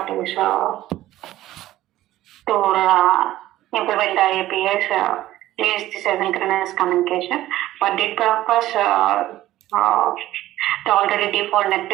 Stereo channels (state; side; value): quieter; left; 14.9 dB